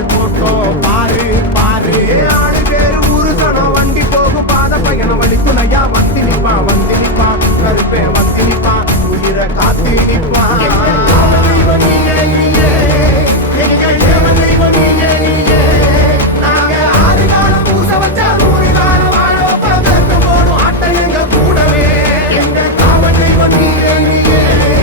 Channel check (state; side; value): normal; both; correlation 0.06